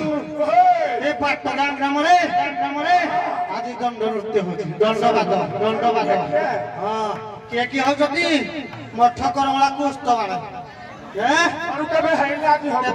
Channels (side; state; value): both; identical; correlation 1.00